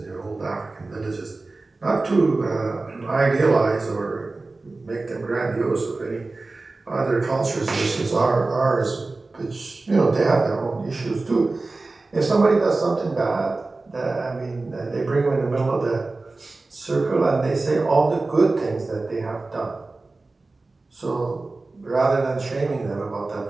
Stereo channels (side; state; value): left; quieter; 3.4 dB